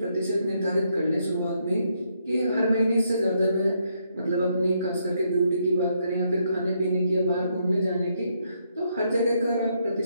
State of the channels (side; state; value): both; inverted; correlation -0.76